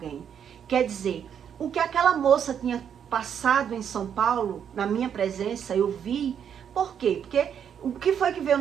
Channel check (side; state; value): left; quieter; 8.3 dB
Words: Quer dizer, o que aquela moça tinha passado em São Paulo, na minha presença, eu vi. Por quê? Porque o que foi que veio